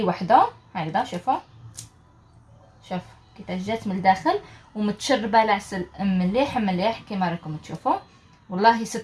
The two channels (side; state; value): both; identical; correlation 1.00